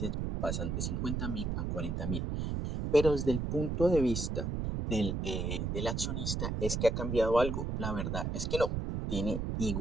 pasan de 50.000 a 40.000. Pero desde el punto de vista del accionista es que ha cambiado algo. La verdad es que no. Tiene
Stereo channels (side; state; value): right; noise; rumble, 2 dB below the sound